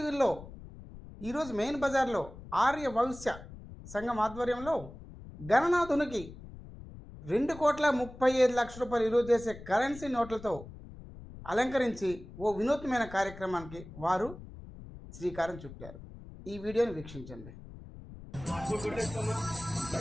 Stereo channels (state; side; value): noise; left; rumble, 15 dB below the sound